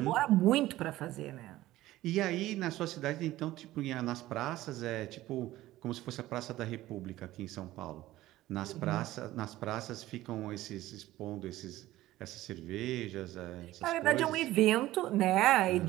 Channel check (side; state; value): left; quieter; 16.0 dB